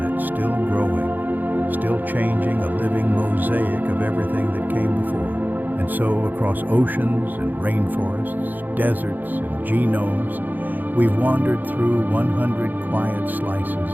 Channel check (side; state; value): left; late; 0.086 ms